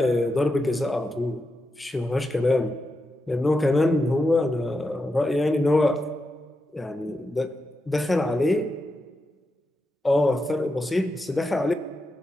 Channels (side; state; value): both; normal; correlation 0.87